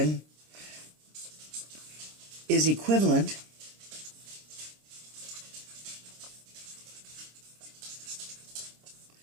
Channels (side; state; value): left; late; 26 ms